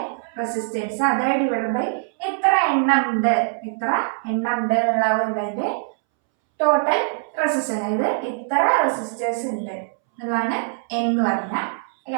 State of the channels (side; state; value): left; silent; 64 dB below the other